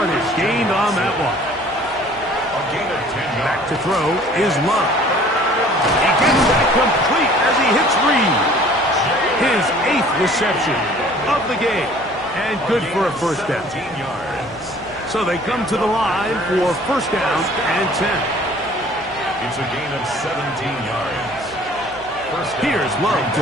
gained on that one. Back to throw is Love. He gets that complete as he hits Reed. His 8th reception of the game. And good for a first down. So they come to the line for first down and 10. It's a gain of 17 yards. Here's Love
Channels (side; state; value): right; noise; hum, 23 dB below the sound